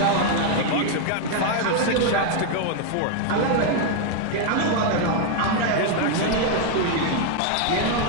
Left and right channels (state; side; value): different; both; correlation 0.01